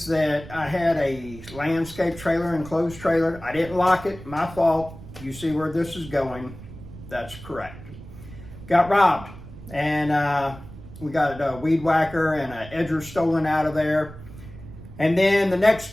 that I had a landscape trailer, enclosed trailer. I didn't lock it, my fault. You see where this is going. That's correct. Got robbed, and we got a weed whacker and an edger stolen out of there. And then the next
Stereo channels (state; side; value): noise; right; rumble, 15 dB below the sound